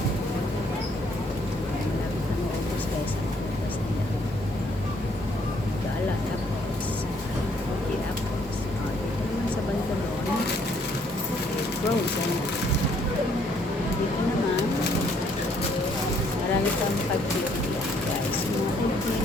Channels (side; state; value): both; normal; correlation 0.66